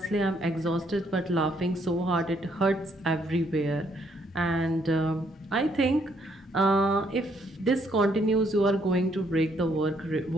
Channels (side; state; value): both; normal; correlation 0.70